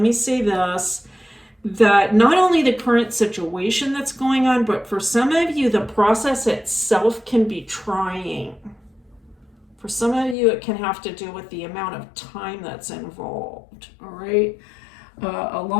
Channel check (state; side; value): drops out; right; at 10.4 s